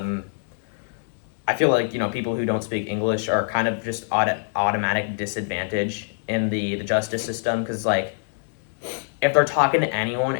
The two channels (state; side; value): silent; right; 62 dB below the other